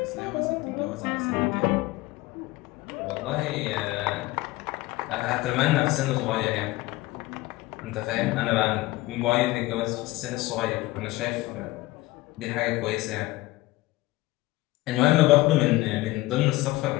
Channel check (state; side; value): quieter; right; 19.2 dB